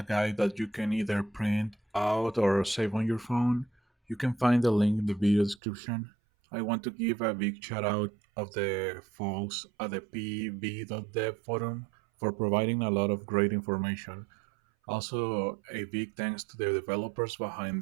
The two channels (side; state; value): left; drops out; at 5.6 s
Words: guide that you can either print out or save on your phone. You can find the link in the video description. I want to give a big shout out of the folks at the pv.dev forum for providing a lot of great information. Also, a big thanks to the developers